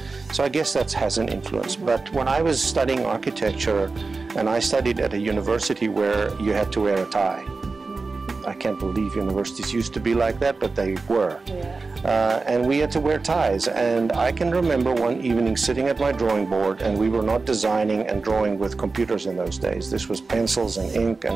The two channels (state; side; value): quieter; left; 4.0 dB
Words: So I guess that has an influence. But when I was studying architecture, and I studied at a university where you had to wear a tie. I can't believe universities used to be like that, but they were. And we had to wear ties. And I can remember one evening sitting at my drawing board, and we were not designing and drawing with computers in those days. This was pencils and ink